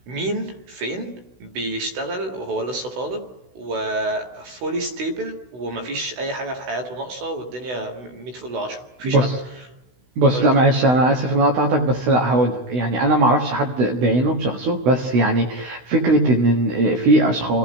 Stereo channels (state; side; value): late; left; 16 ms